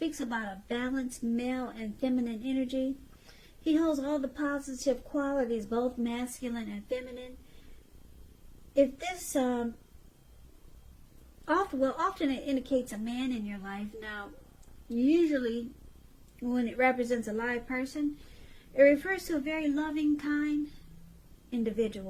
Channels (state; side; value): identical; both; correlation 1.00